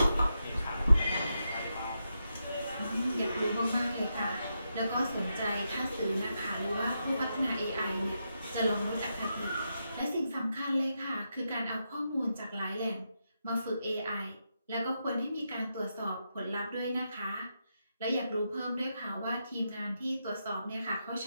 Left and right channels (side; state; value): both; inverted; correlation -0.85